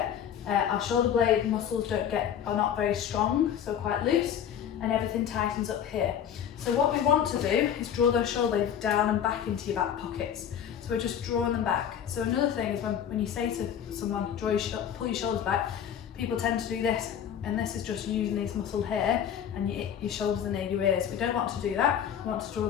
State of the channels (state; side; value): quieter; right; 9.1 dB